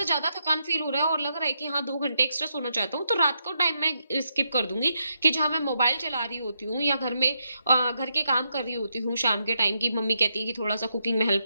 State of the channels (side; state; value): both; inverted; correlation -0.81